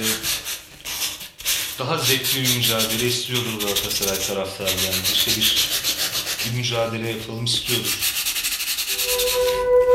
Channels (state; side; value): identical; both; correlation 1.00